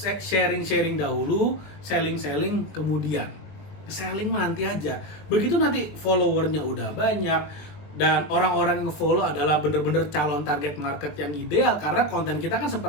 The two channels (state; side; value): late; right; 20 ms